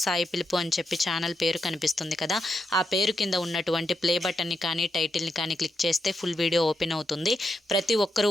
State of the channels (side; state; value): both; normal; correlation 0.83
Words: @సాయి పిలుపు అని చెప్పి ఛానల్ పేరు కనిపిస్తుంది కదా, ఆ పేరు కింద ఉన్నటువంటి ప్లే బటన్ని కానీ టైటిల్ని కానీ క్లిక్ చేస్తే ఫుల్ వీడియో ఓపెన్ అవుతుంది. ప్రతి ఒక్కరూ